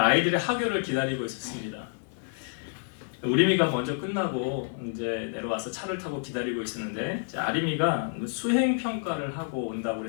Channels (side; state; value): right; silent; 59 dB below the other